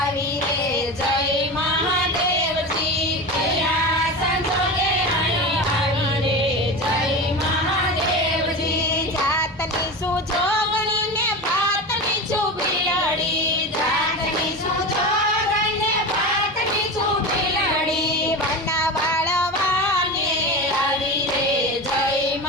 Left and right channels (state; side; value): normal; both; correlation 0.26